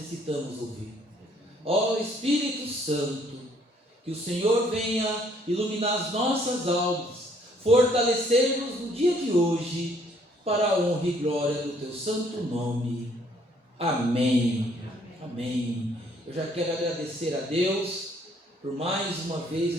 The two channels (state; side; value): normal; both; correlation 0.64